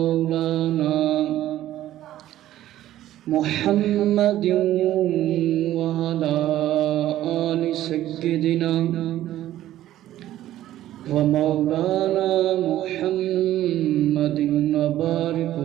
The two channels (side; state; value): left; quieter; 13.5 dB